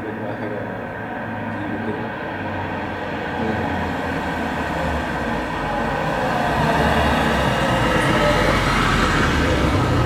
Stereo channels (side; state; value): both; identical; correlation 1.00